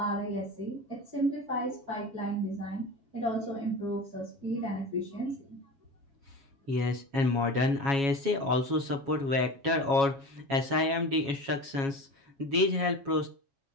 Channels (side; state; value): left; late; 7.2 ms